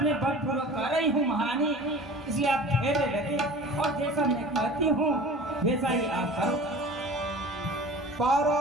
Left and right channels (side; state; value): both; normal; correlation 0.40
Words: बलपूर्वक कर रही हूँ महारानी, इसलिए आप धैर्य रखें और जैसा मैं कहती हूँ वैसा ही आप करो।